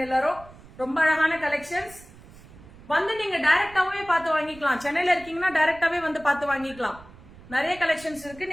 எல்லாரும். ரொம்ப அழகான கலெக்ஷன்ஸ். வந்து நீங்க டைரக்டாவே பார்த்து வாங்கிக்கலாம். சென்னையில இருக்கீங்கன்னா டைரக்டாவே வந்து பார்த்து வாங்கிக்கலாம். நிறைய கலெக்ஷன்ஸ் இருக்கு,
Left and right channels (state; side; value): noise; right; rumble, 21 dB below the sound